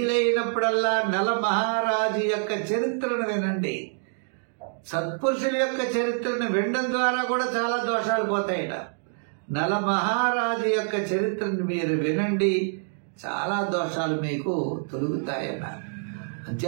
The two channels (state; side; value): silent; left; digital silence